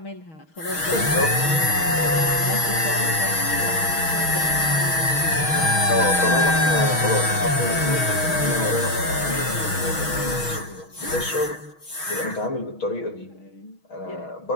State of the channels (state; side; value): late; right; 6.3 ms